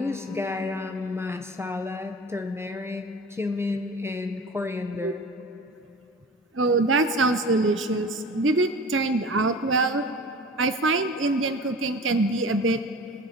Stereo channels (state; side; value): normal; both; correlation 0.38